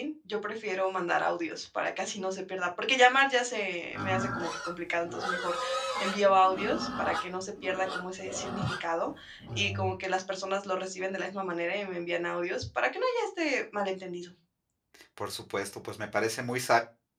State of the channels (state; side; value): identical; both; correlation 1.00